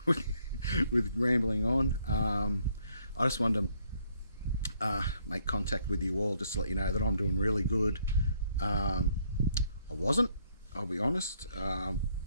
with rambling on. I just wanted to make contact with you all just to let you know that I'm doing really good. I wasn't, I'll be honest,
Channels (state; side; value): inverted; both; correlation -0.69